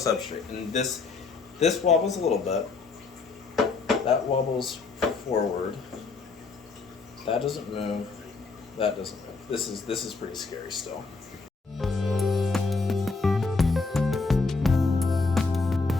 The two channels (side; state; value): right; quieter; 4.2 dB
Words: and this wobbles a little bit. That wobbles forward. That doesn't move. That doesn't move. This is pretty scary still. So